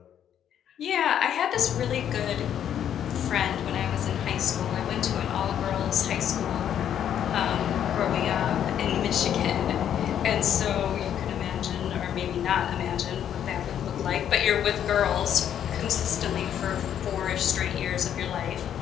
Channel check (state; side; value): quieter; right; 9.7 dB